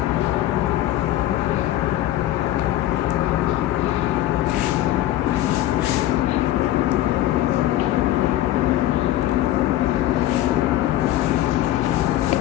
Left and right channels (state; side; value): quieter; right; 14.2 dB